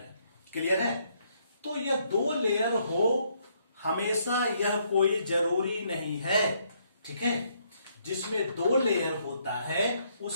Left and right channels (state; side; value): inverted; both; correlation -0.71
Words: क्लियर है? तो यह 2 लेयर हो हमेशा, यह कोई जरूरी नहीं है। ठीक है? जिसमें 2 लेयर होता है